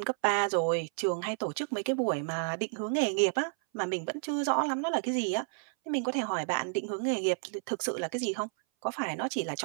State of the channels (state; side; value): silent; left; 57 dB below the other